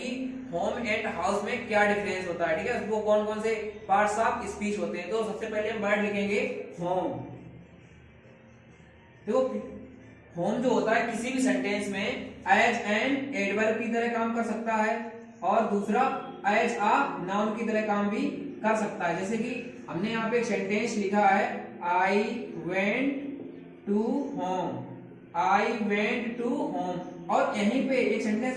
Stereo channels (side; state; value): both; identical; correlation 1.00